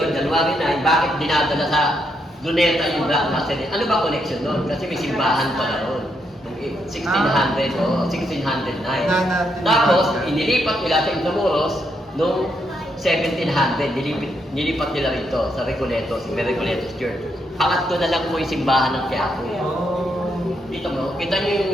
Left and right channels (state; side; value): normal; both; correlation 0.78